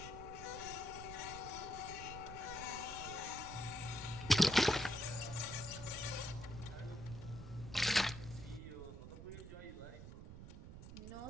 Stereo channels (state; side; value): noise; right; rumble, 11 dB below the sound